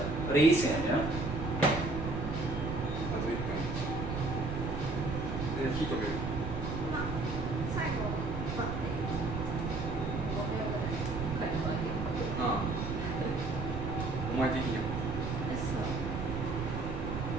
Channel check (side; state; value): right; noise; rumble, 4 dB below the sound